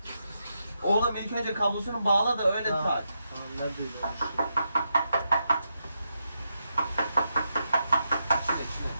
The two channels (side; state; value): both; inverted; correlation -0.84